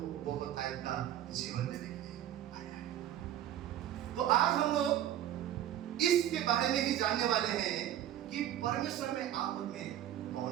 बहुत आयत का जीवन देने के लिए आया है। तो आज हम लोग इसके बारे में ही जानने वाले हैं कि परमेश्वर में आप में कौन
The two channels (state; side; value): quieter; left; 11.7 dB